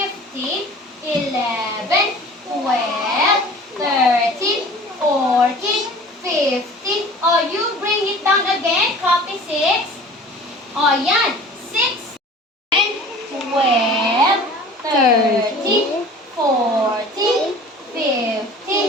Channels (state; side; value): normal; both; correlation 0.44